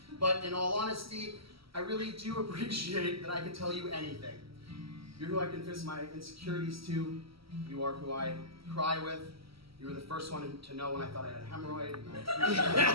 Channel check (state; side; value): late; left; 0.75 ms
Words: but in all honesty, I really do appreciate that I can tell you anything. You're who I confess my insecurities to. You are who I cry with. You were the first one to know when I thought I had a hemorrhoid. And